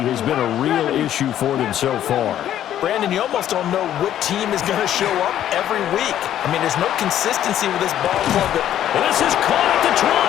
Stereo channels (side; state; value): right; quieter; 11.4 dB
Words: been a real issue for them so far. Brandon, you almost don't know what team is going to show up every week. I mean, there's no consistency with this ball club. And this is caught at the 20.